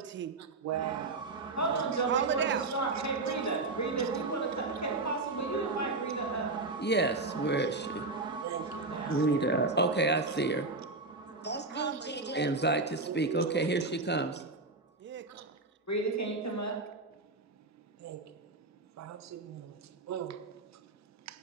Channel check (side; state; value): left; quieter; 3.4 dB